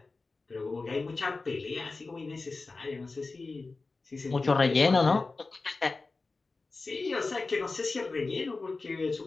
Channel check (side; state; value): right; quieter; 3.8 dB